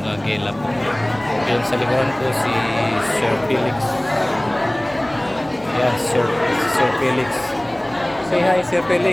gala po. Ayan, sa likuran ko si Sir Felix. Ayan, Sir Felix. Say hi, Sir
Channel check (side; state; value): left; noise; hum, 24 dB below the sound